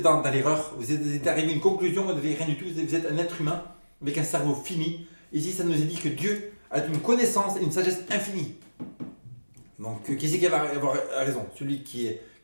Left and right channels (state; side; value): inverted; both; correlation -1.00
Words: dans l'erreur. Vous êtes arrivé à une conclusion, vous n'avez rien du tout. Vous êtes un être humain avec un cerveau fini. Ici, ça nous est dit que Dieu a une connaissance et une sagesse infinie. Donc, qui c'est qui va avoir raison? Celui